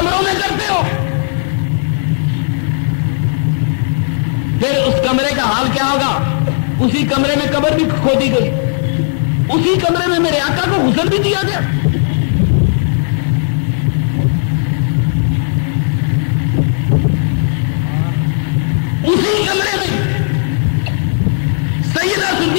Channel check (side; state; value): right; silent; digital silence